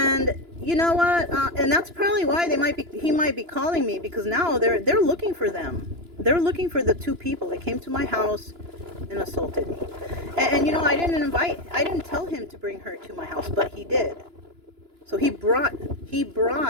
you know what? And that's probably why he might be calling me, because now they're looking for them. They're looking for the two people that came to my house and assaulted me. And I didn't tell him to bring her to my house, but he did. So he brought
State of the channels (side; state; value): left; late; 2.9 ms